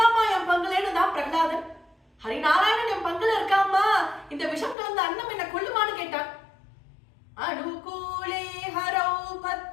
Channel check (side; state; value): right; drops out; at 4.8 s